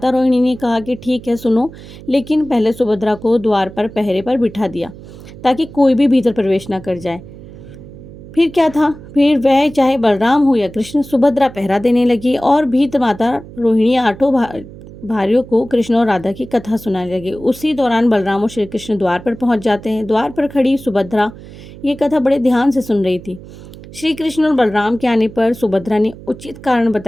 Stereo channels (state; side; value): noise; right; hum, 17 dB below the sound